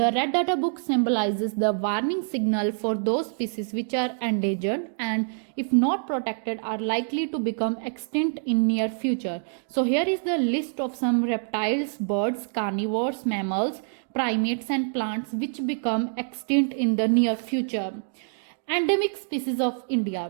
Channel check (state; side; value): silent; left; digital silence